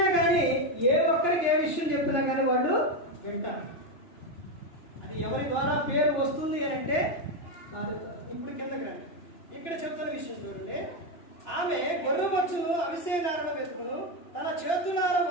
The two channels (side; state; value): right; late; 2.9 ms